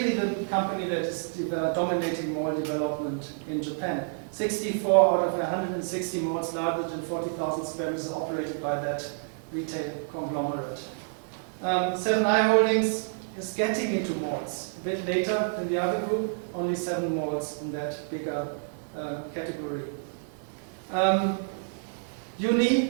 the company that is dominating mall development in Japan. 64 out of 160 malls larger than 40,000 square meters are operated by that retail conglomerate. Seven & i Holdings is getting into malls a bit later than the other group, only 7 malls in that bigger category.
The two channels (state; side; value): silent; left; digital silence